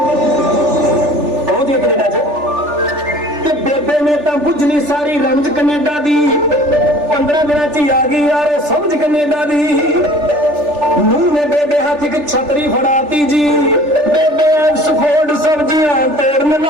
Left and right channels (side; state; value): left; late; 3.4 ms